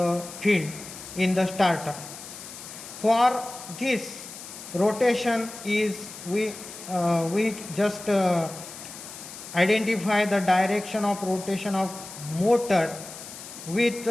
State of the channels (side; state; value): left; noise; hiss, 13 dB below the sound